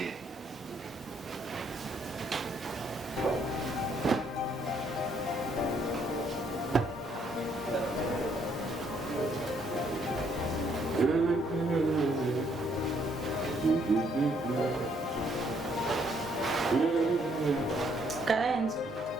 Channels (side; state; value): both; normal; correlation 0.69